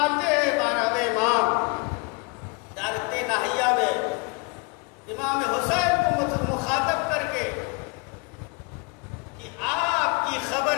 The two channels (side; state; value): right; quieter; 30.5 dB